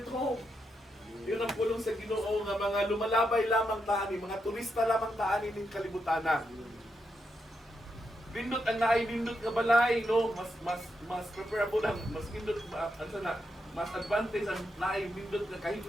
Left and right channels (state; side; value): normal; both; correlation 0.83